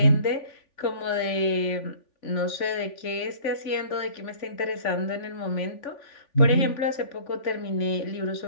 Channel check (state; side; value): late; right; 3.5 ms